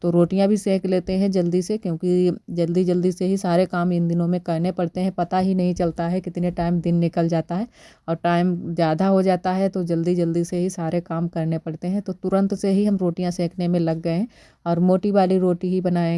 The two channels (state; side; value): identical; both; correlation 1.00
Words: तो रोटियां भी सेक लेते हैं जल्दी से, क्योंकि जल्दी जल्दी से ही सारे काम इन दिनों में करने पड़ते हैं। पता ही नहीं चलता है कितने टाइम दिन निकल जाता है, और टाइम ज़्यादा हो जाता है तो जल्दी जल्दी से ही सारे काम करने पड़ते हैं। तो तुरंत से ही हम रोटियाँ सेकने में लग गए हैं। और मोटी वाली रोटी ही